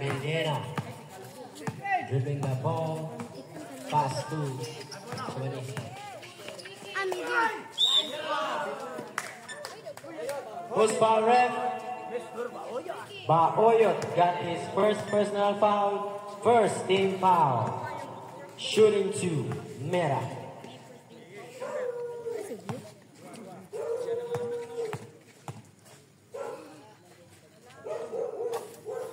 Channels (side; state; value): both; identical; correlation 1.00